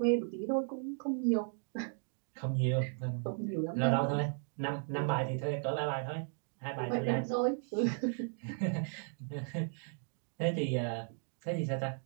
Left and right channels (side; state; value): left; silent; 54 dB below the other